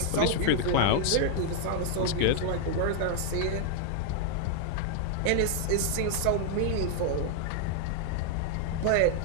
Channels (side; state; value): both; different; correlation 0.00